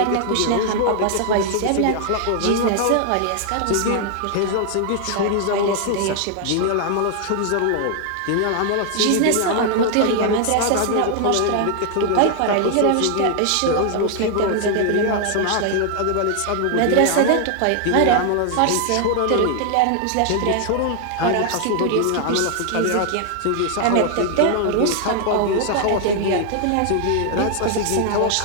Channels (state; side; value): different; both; correlation 0.00